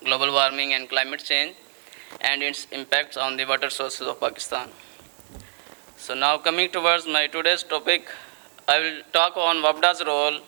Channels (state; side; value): silent; left; digital silence